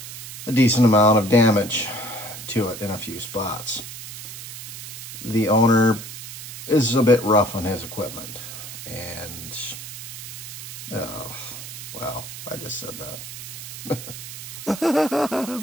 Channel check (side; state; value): right; noise; hiss, 10 dB below the sound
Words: a decent amount of damage to it in a few spots. The owner is a bit rough on his equipment, and well, I just said that.